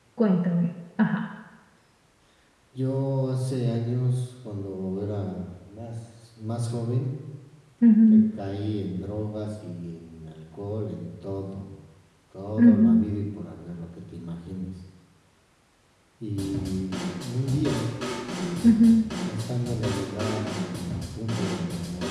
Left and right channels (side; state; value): both; identical; correlation 1.00